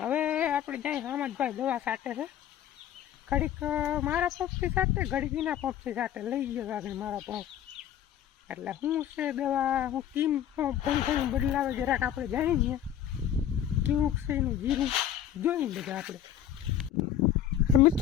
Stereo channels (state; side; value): quieter; right; 10.5 dB